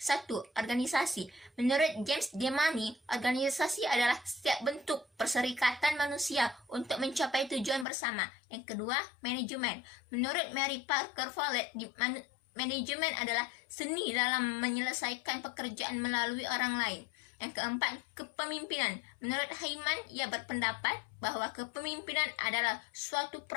Organisasi. Menurut James Demany, organisasi adalah setiap bentuk perserikatan manusia untuk mencapai tujuan bersama. Yang kedua, manajemen. Menurut Mary Parker Follett, manajemen adalah seni dalam menyelesaikan pekerjaan melalui orang lain. Yang keempat, kepemimpinan. Menurut Heyman, ia berpendapat bahwa kepemimpinan adalah suatu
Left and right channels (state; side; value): drops out; right; at 7.9 s